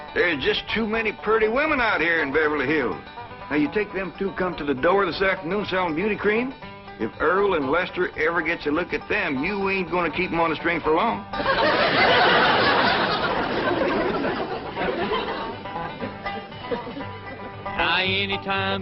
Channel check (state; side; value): identical; both; correlation 1.00